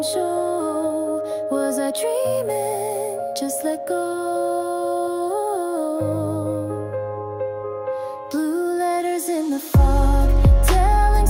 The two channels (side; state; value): both; identical; correlation 1.00